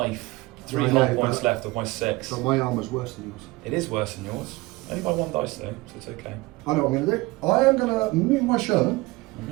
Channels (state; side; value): quieter; left; 21.6 dB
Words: 3 I health know, points but- left of my 6. So my armour's worse than yours. It is worse than yours. Only by 1 dice though, so it's okay. I know what I'm going to do. I am going to move my Sherman